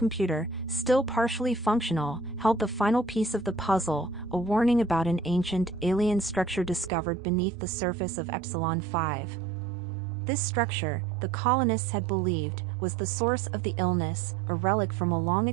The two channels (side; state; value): left; drops out; at 6.9 s